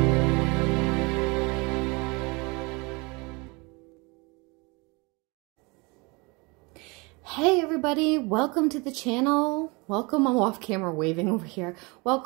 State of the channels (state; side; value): quieter; left; 27.6 dB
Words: Hey everybody, welcome to the channel. Welcome, I'm off camera waving over here.